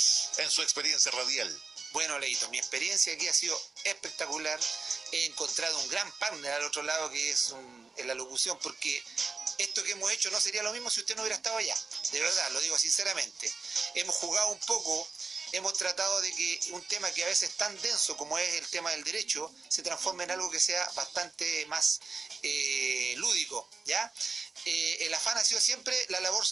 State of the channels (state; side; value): quieter; left; 4.3 dB